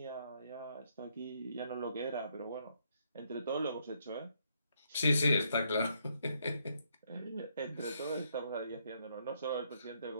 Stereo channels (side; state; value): both; inverted; correlation -0.73